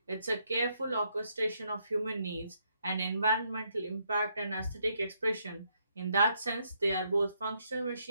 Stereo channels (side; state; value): both; inverted; correlation -0.75